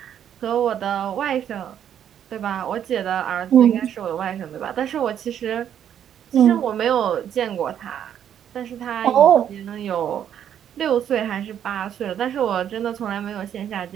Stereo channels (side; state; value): left; quieter; 9.6 dB